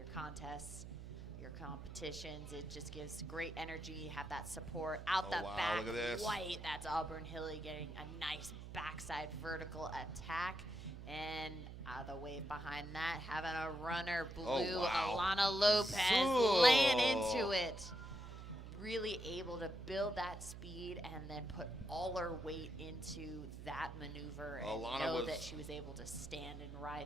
contests, your competitions. It just gives great energy. Have that support out the back. Look at this. White. That's Auburn Hilly getting a nice backside vertical attack. And the wave behind that, having a runner, blue, Alana Lopez laying into it. Really able to build that speed and then put all her weight into that maneuver and that she was able to stand and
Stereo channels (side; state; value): right; noise; hum, 11 dB below the sound